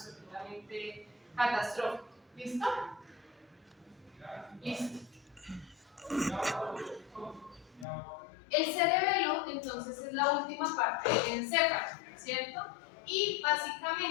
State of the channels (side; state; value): right; drops out; at 7.9 s